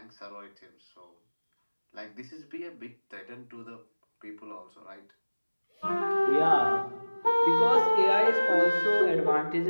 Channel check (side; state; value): both; inverted; correlation -1.00